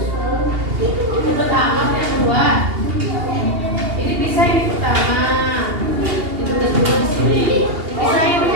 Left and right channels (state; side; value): late; left; 2.8 ms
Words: Itu tamat yang kedua. Ini bisa ini pertama. Ditulis dulu di sini. Bisa ini